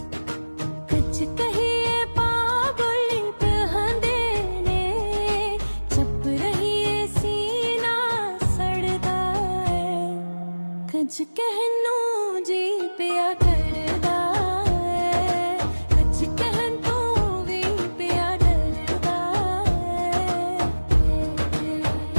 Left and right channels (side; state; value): both; inverted; correlation -1.00